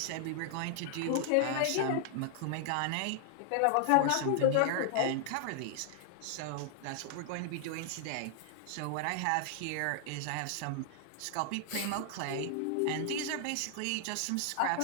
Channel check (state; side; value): different; both; correlation 0.00